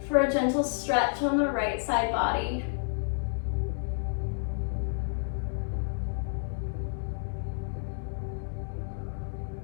for a gentle stretch on the right side body.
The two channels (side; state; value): right; silent; digital silence